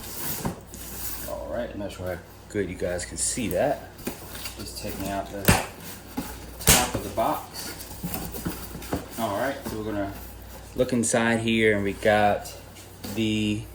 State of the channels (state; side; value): identical; both; correlation 1.00